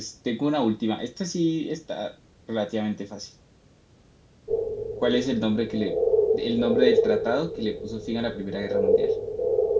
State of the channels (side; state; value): both; identical; correlation 1.00